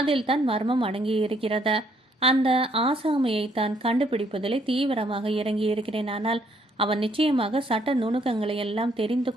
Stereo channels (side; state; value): both; normal; correlation 0.68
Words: தான் மர்மம் அடங்கியிருக்கிறது. அந்த ஆசாமியை தான் கண்டுபிடிப்பதிலே தீவிரமாக இறங்கியிருக்கிறேன். ஆனால் அவன் நிச்சயமாக சட்ட நுணுக்கங்களை எல்லாம் தெரிந்து